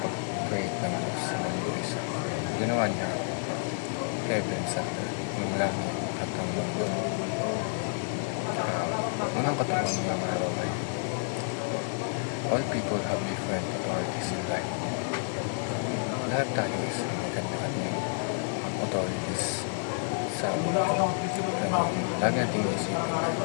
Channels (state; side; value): silent; right; 58 dB below the other